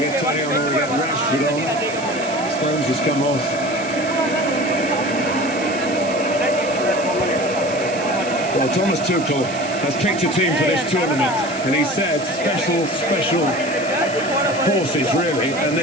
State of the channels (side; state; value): right; noise; hiss, 14 dB below the sound